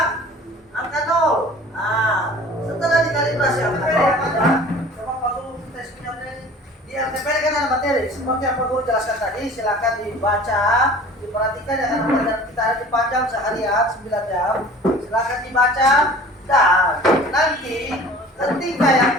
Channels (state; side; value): normal; both; correlation 0.45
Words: 0. Nah, setelah dikalibrasi LTP ada, coba kalau tes punya ini di LTP kan ada materi seperti yang Pak Guru jelaskan tadi, silakan dibaca, diperhatikan ya karena pelajaran kita ada dipanjang seharian 9 jam. Silakan dibaca dan nanti ketika